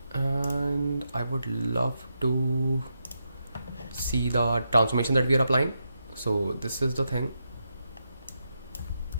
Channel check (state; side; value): inverted; both; correlation -0.85